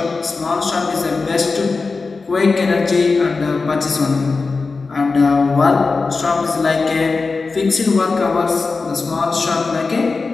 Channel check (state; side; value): quieter; right; 4.2 dB